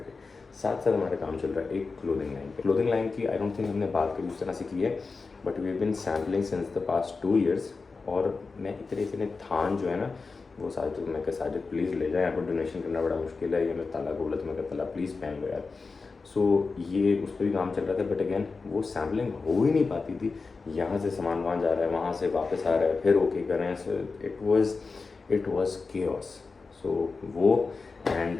साथ साथ हमारा काम चल रहा है एक क्लोथिंग लाइन पे। क्लोथिंग लाइन की आई डोंट थिंक हमने बात कभी उस तरह से की है, but we have been sampling since the past 2 years. और मैं इतने थान जो है ना, वो साजिद, मैं कहा साजिद प्लीज़ ले जाए, यहाँ पर डोनेशन करना बड़ा मुश्किल है, ये मैं ताला बोला तो मैं कहा ताला प्लीज़ पहन लो यार। सो ये उस पर भी काम चल रहा था, बट अगेन वो सैम्पलिंग हो ही नहीं पाती थी। यहाँ से सामान वहाँ जा रहा है, वहाँ से वापस आ रहा है, फिर ओके कर रहे हैं। So it was chaos. So वो and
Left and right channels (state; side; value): quieter; right; 4.3 dB